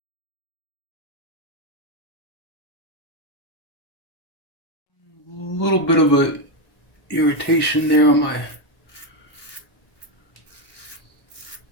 A little bit of a irritation there on my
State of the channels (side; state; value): right; late; 1.1 ms